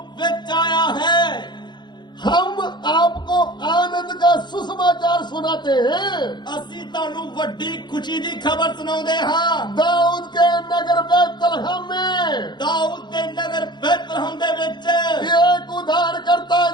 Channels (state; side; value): late; right; 0.21 ms